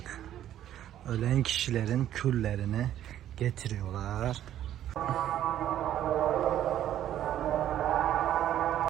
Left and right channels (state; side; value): quieter; left; 11.7 dB